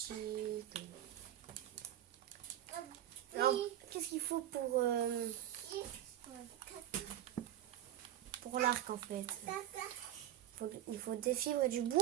Alors, qu'est-ce qu'il faut pour l'arc en fait? Il faut des fibres et du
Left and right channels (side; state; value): left; quieter; 12.3 dB